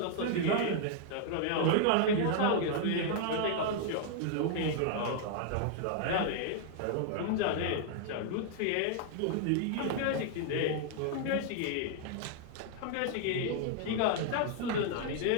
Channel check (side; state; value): both; different; correlation 0.00